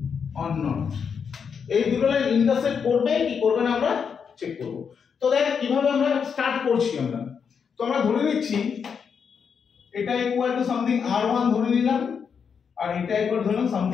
or not. এই দুটো line intersect করবে কি করবে না আমরা চেক করব। তো দেখ কিভাবে আমরা স্টার্ট করছি আমরা। তো আমরা ধরে নিচ্ছি এটা ইকুয়াল টু সামথিং r1 ধরে নিলাম আর এটা ইকুয়াল ধরলাম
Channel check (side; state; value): right; quieter; 6.6 dB